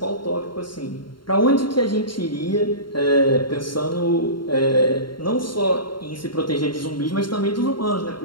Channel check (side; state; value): right; late; 0.72 ms